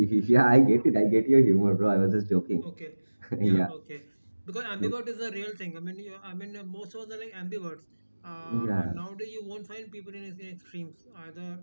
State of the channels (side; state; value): both; inverted; correlation -1.00